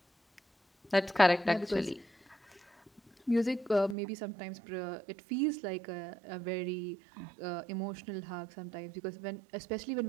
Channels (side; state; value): left; drops out; at 4.0 s